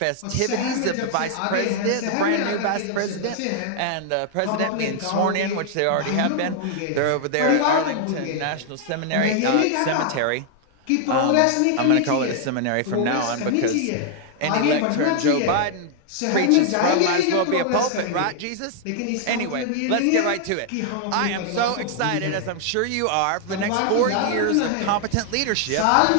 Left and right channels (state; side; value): different; both; correlation 0.00